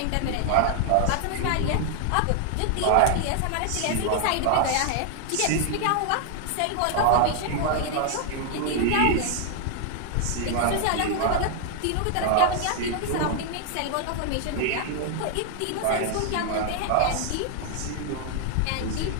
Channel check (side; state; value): both; different; correlation 0.00